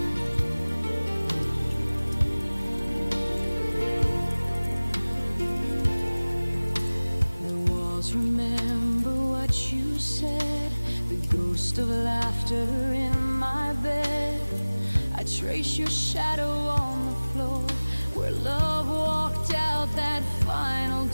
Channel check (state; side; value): inverted; both; correlation -1.00